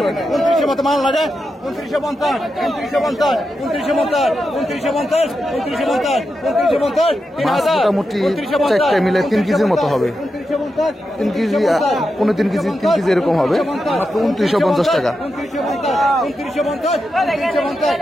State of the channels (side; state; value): both; normal; correlation 0.88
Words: মাল লাগে 2950, 2950, 2950, 2950, 2950, 2950, মাছ 3000, মোটামুটি 4টে মিলে 3 কেজির মতো হবে। 3 কেজি 3.5 কেজি 3 কেজি এরকম হবে মাত্র 2950 টাকা।